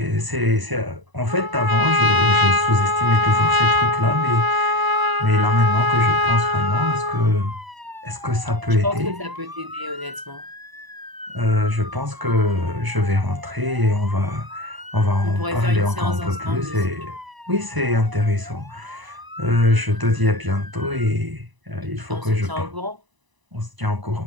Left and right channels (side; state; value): left; late; 1.0 ms